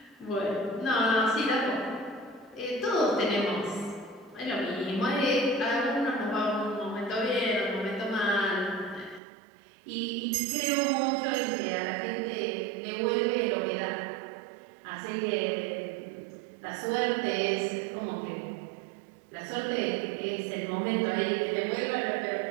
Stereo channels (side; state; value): left; drops out; at 9.2 s